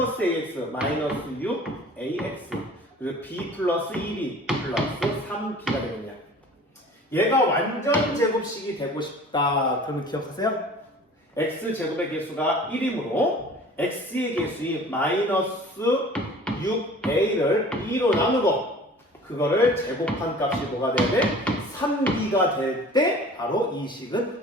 ax 마이너스 6ax 그리고 b 플러스 2b 플러스 3b가 되겠네요. 얘가 완전 제곱식이 되고 싶다. 그러면 기억하세요? x제곱의 개수가 1이므로 x의 개수인 마이너스 6a를 2로 나누고 그거를 제곱한 값이 뭐가 돼야 돼? 3b가 될 때 바로 이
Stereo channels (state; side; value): normal; both; correlation 0.45